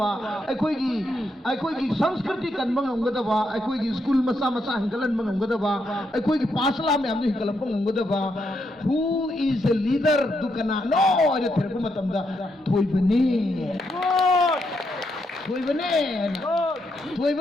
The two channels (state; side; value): normal; both; correlation 0.80